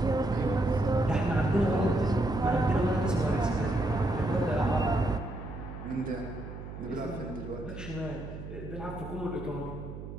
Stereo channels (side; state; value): right; noise; hum, 10 dB below the sound